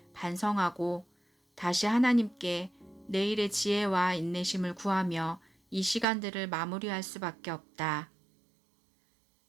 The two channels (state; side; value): drops out; left; at 6.1 s